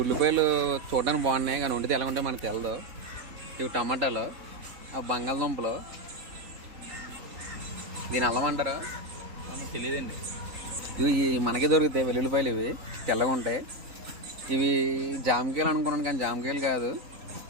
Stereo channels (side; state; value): left; late; 3.8 ms